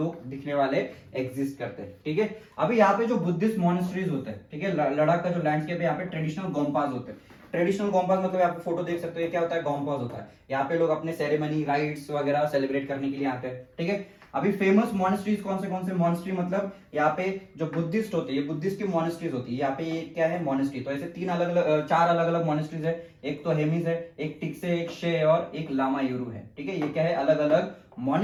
दिखने वाले एग्जिस्ट करते हैं, ठीक है। अभी यहाँ पे जो बुद्धिस्ट मॉनेस्ट्रीज होते हैं, ठीक है, लद्दाख का जो लैंडस्केप है यहाँ पे ट्रेडिशनल गोम्पास होते हैं। ट्रेडिशनल गोम्पास मतलब आप फोटो देख सकते हो, ये क्या होता है? गोम्पास होता है। यहाँ पे लोग अपने सेरेमनी, राइट्स वगैरह सेलिब्रेट करने के लिए आते हैं, ठीक है। अभी फेमस मॉनेस्ट्रीज कौन से मॉनेस्ट्री? मतलब यहाँ पे जो बुद्धिस्ट होते हैं, ये बुद्धिस्ट की मॉनेस्ट्रीज होती है। यहाँ पे ये क्या है? मॉनेस्ट्री। तो ऐसे चार अलग अलग मॉनेस्ट्रीज है। एक तो हेमिस है, एक टिक्से, एक शे और एक लामा यूरू है, ठीक है। ये क्या है? अलग अलग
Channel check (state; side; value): identical; both; correlation 1.00